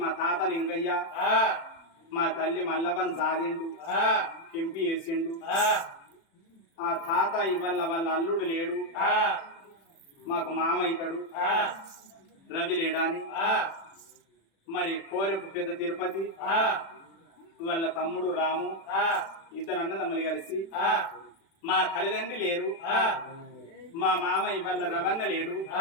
మా తాత లింగయ్య, మా తల్లి మల్లవన్ జాదిండు, కెంపి వేసిండు. ఆ తాత ఇవల్ల వాళ్ళ అల్లుడు లేడు, మాకు మామ అవుతాడు, రవి లేడాని. మరి కోరెపు పెద్ద తిరుపతి వాళ్ళ తమ్ముడు రాము, ఇద్దరు అన్నదమ్ములు కలిసి మా తల్లిదండ్రి లేరు, మా మామ ఇవాళ రవన్న లేడు,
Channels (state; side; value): late; right; 36 ms